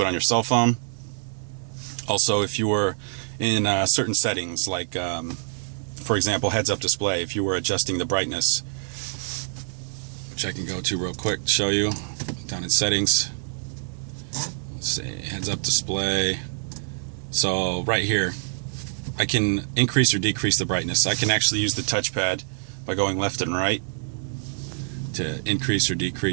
on your cell phone. Also, if you were in certain settings, like for example heads-up display, if you were adjusting the brightness, which I can go to real quick to show you, down in settings, let's say heads-up display. So right here I can increase or decrease the brightness. I can actually use the touchpad by going left and right to increase or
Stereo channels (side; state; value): left; silent; digital silence